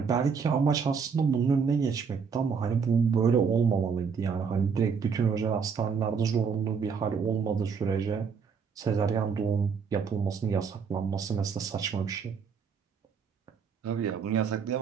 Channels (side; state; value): left; quieter; 6.0 dB